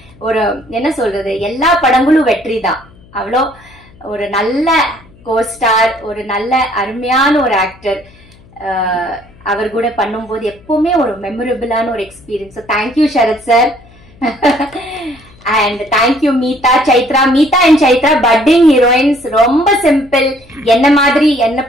ஒரு என்ன சொல்றது, எல்லா படங்களும் வெற்றி தான். அவ்வளோ ஒரு நல்ல கோஸ்டார், ஒரு நல்ல அருமையான ஒரு ஆக்டர். அவர் கூட பண்ணும்போது எப்பவுமே ஒரு மெமரபிளான ஒரு experience. Thank you Sharath sir. And thank you Meetha, Chaitra. Meetha and Chaitra budding heroines. ரொம்ப சிம்பிள், என்ன மாதிரி, என்ன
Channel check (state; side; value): noise; left; hum, 26 dB below the sound